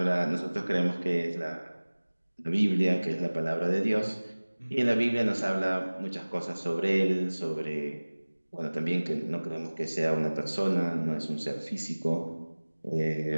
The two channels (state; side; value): inverted; both; correlation -1.00